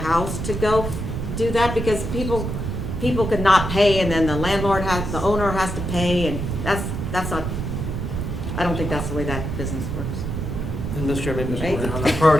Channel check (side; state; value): right; noise; rumble, 4 dB below the sound